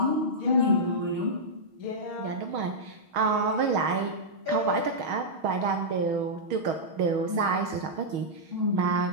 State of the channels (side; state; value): left; late; 6.3 ms